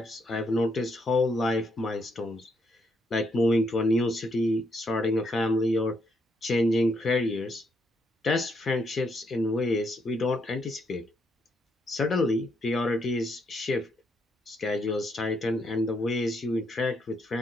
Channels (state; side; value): normal; both; correlation 0.76